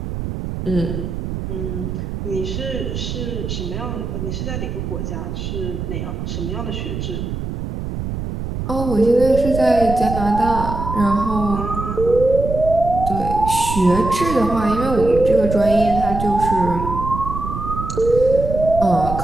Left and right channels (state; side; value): noise; right; rumble, 5 dB below the sound